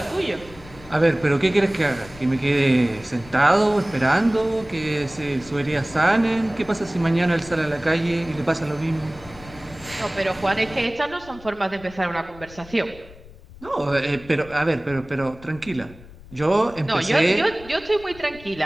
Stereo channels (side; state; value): left; noise; rumble, 20 dB below the sound